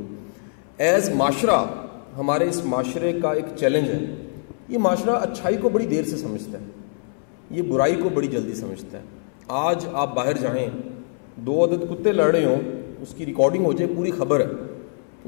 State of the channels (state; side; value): silent; right; 63 dB below the other